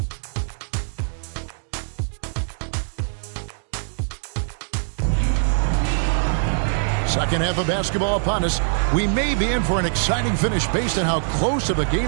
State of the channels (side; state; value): left; silent; 64 dB below the other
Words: Second half of basketball upon us. We may be in for an exciting finish based on how close of a